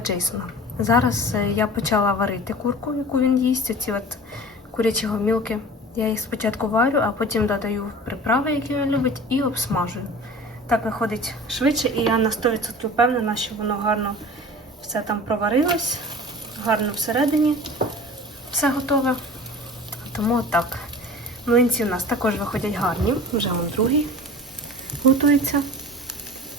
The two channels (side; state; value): both; normal; correlation 0.39